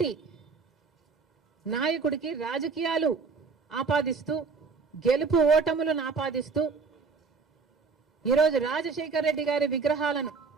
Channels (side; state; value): left; quieter; 4.8 dB